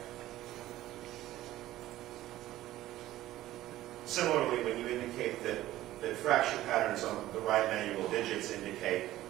Similarly, when you indicate that fracture patterns on the right manual digits indicate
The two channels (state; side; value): quieter; left; 15.0 dB